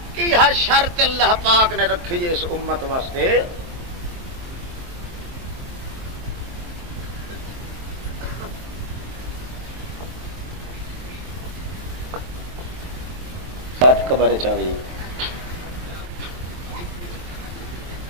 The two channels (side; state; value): left; late; 23 ms